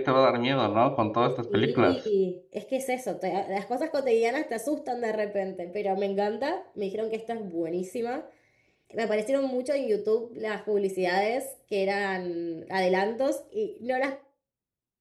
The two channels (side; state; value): both; identical; correlation 1.00